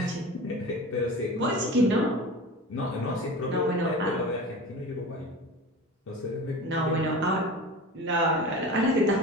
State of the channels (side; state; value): both; normal; correlation 0.33